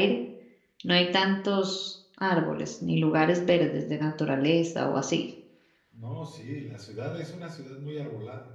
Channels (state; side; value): identical; both; correlation 1.00